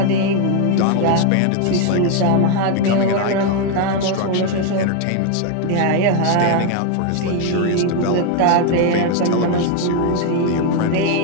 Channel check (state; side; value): different; both; correlation 0.01